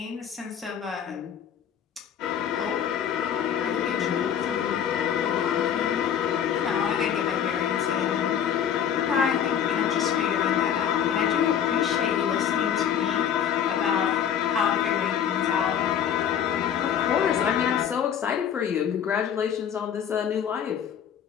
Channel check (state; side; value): quieter; right; 8.8 dB